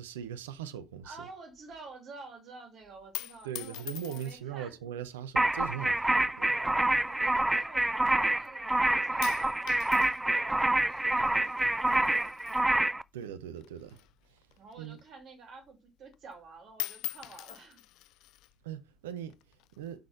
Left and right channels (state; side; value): normal; both; correlation 0.93